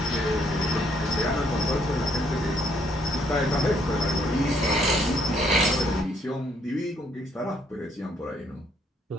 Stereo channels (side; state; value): both; normal; correlation 0.68